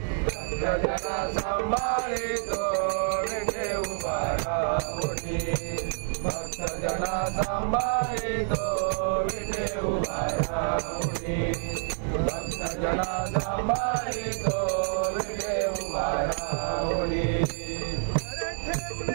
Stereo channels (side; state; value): left; silent; digital silence